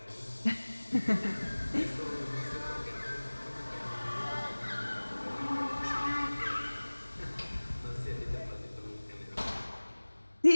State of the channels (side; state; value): both; inverted; correlation -1.00